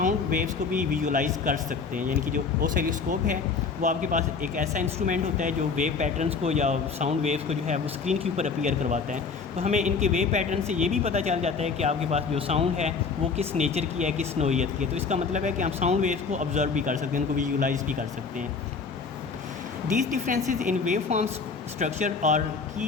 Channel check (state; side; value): quieter; right; 5.1 dB